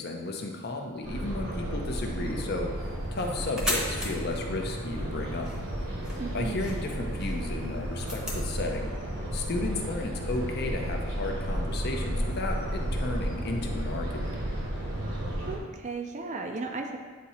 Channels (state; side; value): normal; both; correlation 0.57